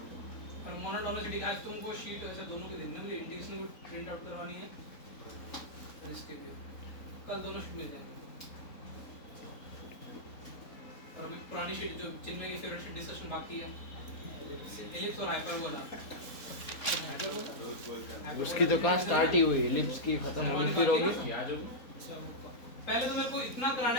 और मोनोटोनिसिटी। आज तुमको शीट ऐसे दोनों की देनी है, मुझे इंडिकेशन को प्रिंट आउट करवानी है, और इसके लिए कल दोनों शीट मिल जाएंगे। और अभी पुरानी शीट जो चिन्मय की फेवरेट शीट डिस्कशन बाकी है, एलिप्स और हाइपरबोला। उसकी तो कहाँ स्टार्ट ही हुई, एलिप्स की खत्म होनी फिर होगी। पहले तो मेरे को इतना कराना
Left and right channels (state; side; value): late; right; 4.0 ms